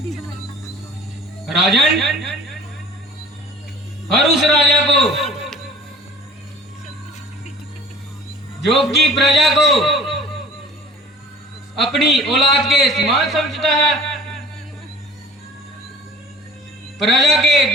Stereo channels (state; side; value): normal; both; correlation 0.46